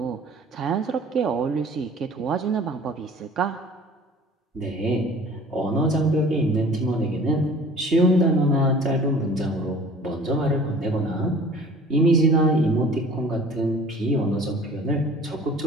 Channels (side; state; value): both; normal; correlation 0.47